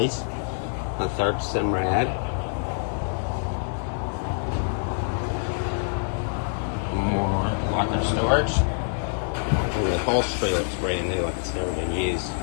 a third Simrad, more weapon storage, and the upholstery looks brand new, like it's never been used.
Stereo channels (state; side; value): silent; right; 61 dB below the other